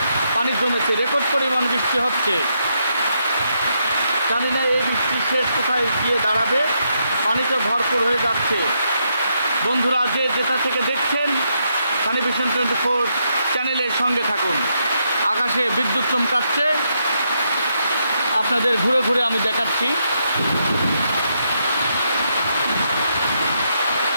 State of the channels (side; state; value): both; inverted; correlation -0.79